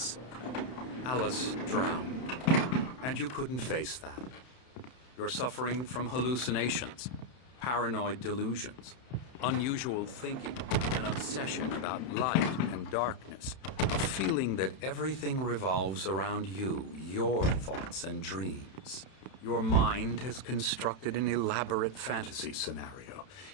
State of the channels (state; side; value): late; right; 31 ms